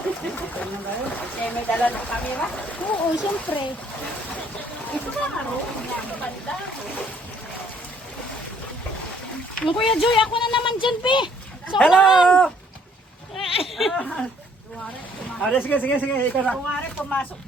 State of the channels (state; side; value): normal; both; correlation 0.63